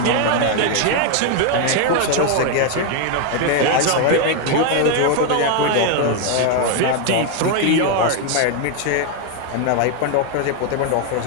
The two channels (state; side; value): different; both; correlation 0.01